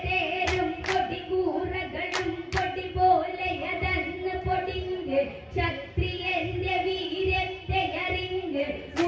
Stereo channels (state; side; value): identical; both; correlation 1.00